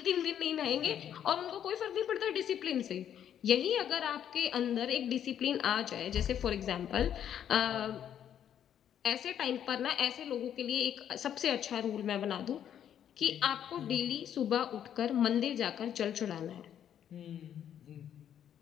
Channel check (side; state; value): right; quieter; 9.7 dB